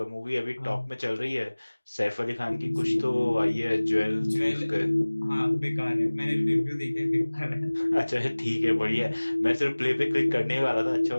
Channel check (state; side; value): inverted; both; correlation -1.00